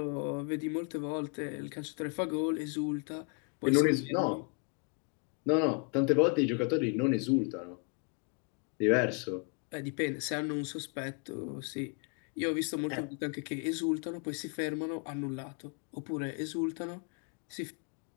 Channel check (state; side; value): quieter; right; 36.1 dB